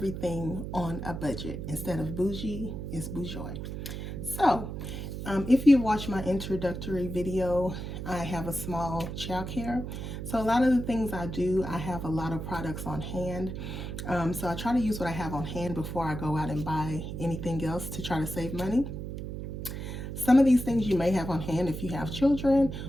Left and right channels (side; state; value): right; noise; hum, 6 dB below the sound